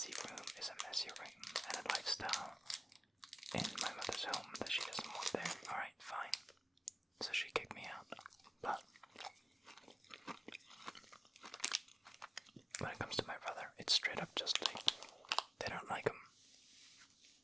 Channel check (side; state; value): both; normal; correlation 0.96